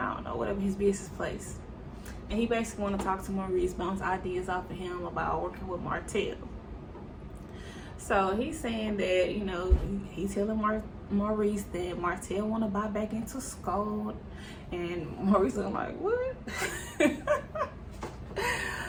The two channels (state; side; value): identical; both; correlation 1.00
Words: don't know, whatever his business place. And he basically want to talk to Maurice, bounce ideas off of him about working with Martell. So he's saying that, he's telling Maurice that Martell want to buy back into Scold. And Maurice is like, what?